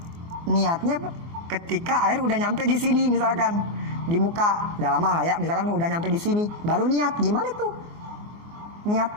niatnya ketika air udah nyampe di sini, misalkan di muka, udah lama lah ya, misalkan udah nyampe di sini, baru niat. Gimana tuh? Niat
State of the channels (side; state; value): left; late; 24 ms